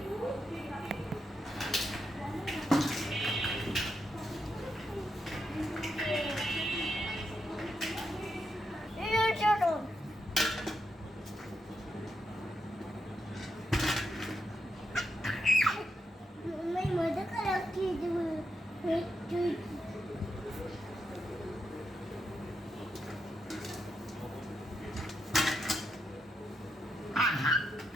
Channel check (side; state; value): both; normal; correlation 0.83